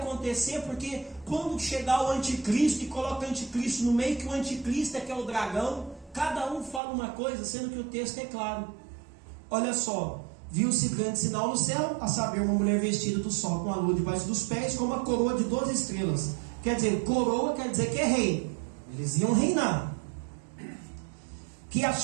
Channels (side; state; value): left; drops out; at 6.8 s